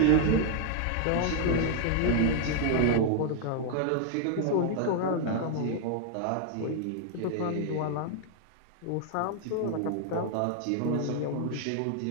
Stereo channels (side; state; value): both; different; correlation 0.00